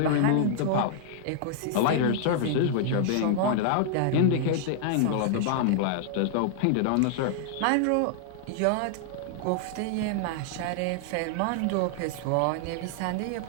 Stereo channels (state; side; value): different; both; correlation -0.01